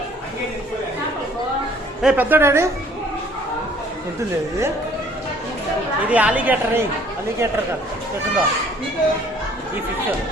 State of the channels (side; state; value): both; normal; correlation 0.57